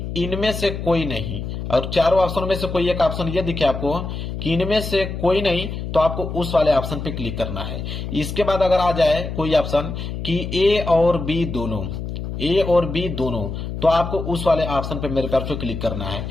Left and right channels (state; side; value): noise; left; hum, 6 dB below the sound